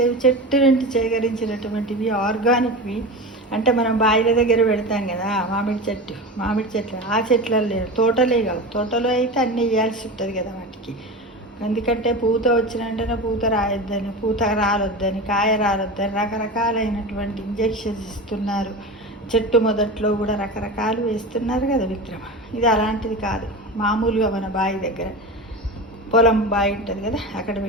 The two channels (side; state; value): both; normal; correlation 0.27